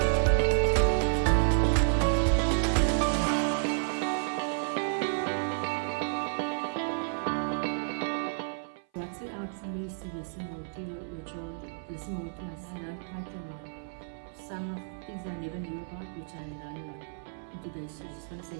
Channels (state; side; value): silent; left; 56 dB below the other